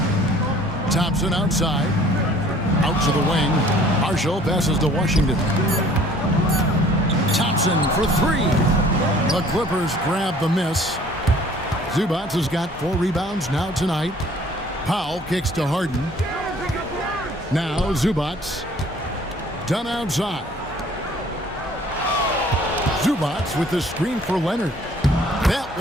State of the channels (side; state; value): both; normal; correlation 0.54